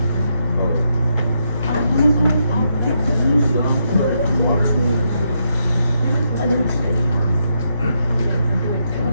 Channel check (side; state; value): both; inverted; correlation -0.81